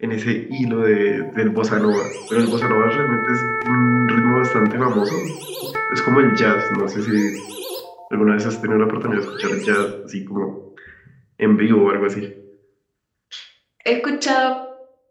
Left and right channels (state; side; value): identical; both; correlation 1.00